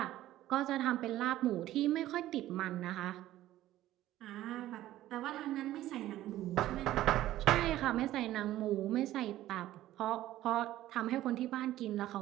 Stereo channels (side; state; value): left; quieter; 14.3 dB